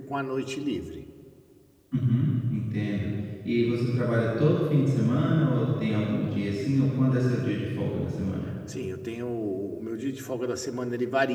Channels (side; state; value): both; identical; correlation 1.00